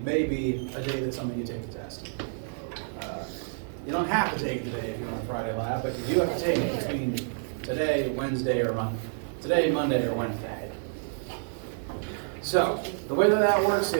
may be a day that some of you take the test. You don't have to take it today if you're on a Friday lab, but you do have to take it between today, Wednesday, or Monday, or Wednesday. So, the way that works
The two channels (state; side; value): silent; left; digital silence